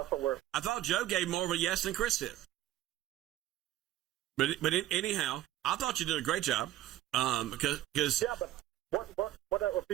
what we're. I thought Joe gave more of a yes than Chris did. But anyhow, I thought you did a great job. Because yeah, but what are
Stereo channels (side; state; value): left; quieter; 13.7 dB